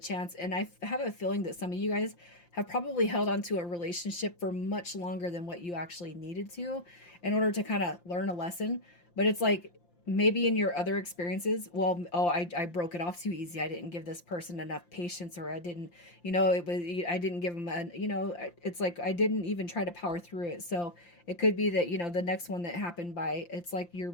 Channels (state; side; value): late; right; 5.8 ms